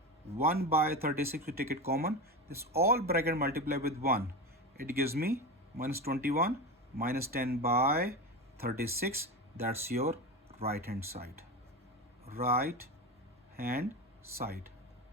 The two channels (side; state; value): both; normal; correlation 0.22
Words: 1 by 36, we take it common. This all bracket multiply with 1. It gives me minus 21 minus 10 by 36. That's your right hand side. Right hand side.